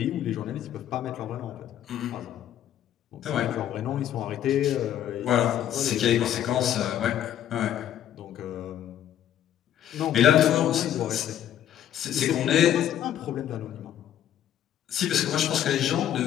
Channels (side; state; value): right; quieter; 11.1 dB